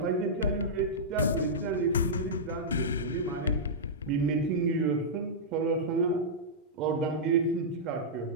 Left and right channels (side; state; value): both; normal; correlation -0.12